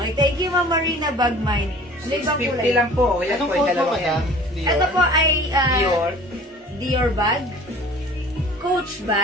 thank you, Ma'am Marina Bagmine. Ano ibang 650 kulay? lang po. Yan Anong po yung code mo, dalawa yan. madam? Ito po ay Dior. Dior bag. Coach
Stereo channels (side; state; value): both; normal; correlation 0.46